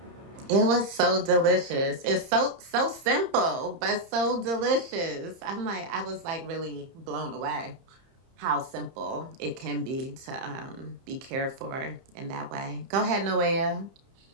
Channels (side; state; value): left; late; 30 ms